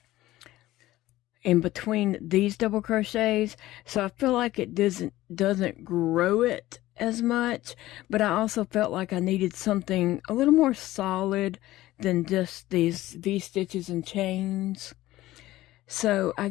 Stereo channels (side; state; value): right; quieter; 16.2 dB